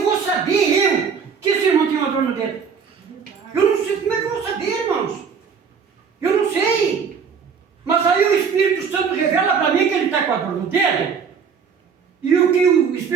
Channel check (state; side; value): quieter; left; 6.3 dB